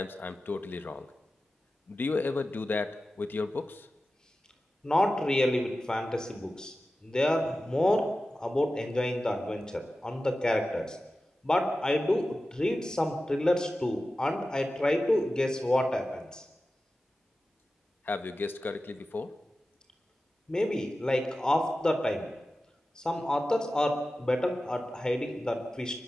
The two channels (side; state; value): both; normal; correlation 0.94